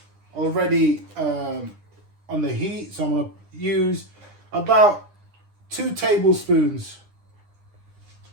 already on the heat. So I'm going to use about 2 tablespoons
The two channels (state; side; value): late; left; 9.8 ms